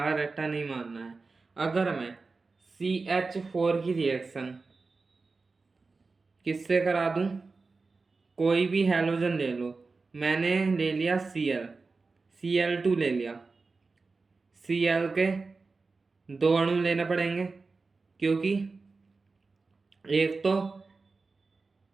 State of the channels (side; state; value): left; quieter; 4.0 dB